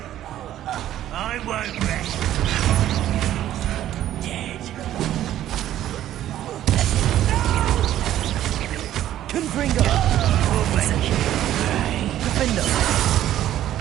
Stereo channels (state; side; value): quieter; left; 12.5 dB